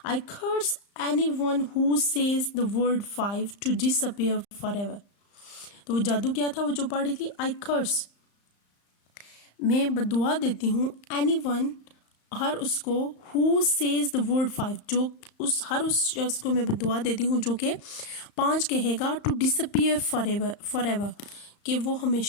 I curse anyone who says the word 5 to disappear forever. तो वो जादू क्या था वो जो पढ़ रही थी, आई कर्स, मैं बदुआ देती हूँ, एनीवन, हर उसको, हु सेज द वर्ड 5, जो हर उस शख्स को मैं दुआ देती हूँ जो कि 5 कहेगा, टू डिसअपीयर फॉरएवर, कि वो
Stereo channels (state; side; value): late; right; 35 ms